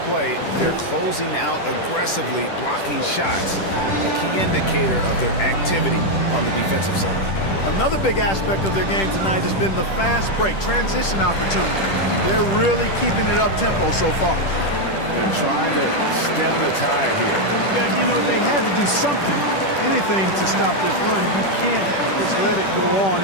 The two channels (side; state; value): right; late; 10 ms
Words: play, they're closing out aggressively, blocking shots, a key indicator of their activity on the defensive side. Another big aspect of their game tonight has been the fast break, transition opportunity. They're really keeping it up-tempo so far. They're trying to stem the tide here. Yeah, you know, they had to do something, anything to stop this run. You can't just let it go on